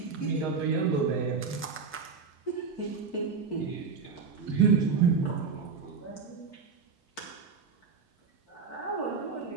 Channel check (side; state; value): left; quieter; 5.4 dB